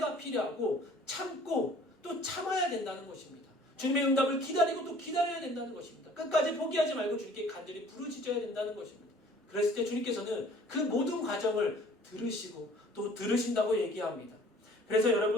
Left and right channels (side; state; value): both; normal; correlation 0.52